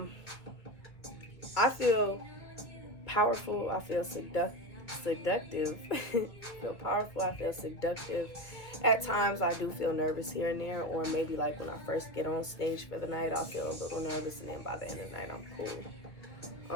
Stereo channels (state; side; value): late; right; 2.0 ms